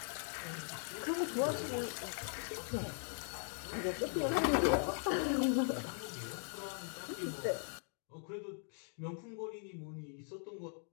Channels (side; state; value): right; silent; 51 dB below the other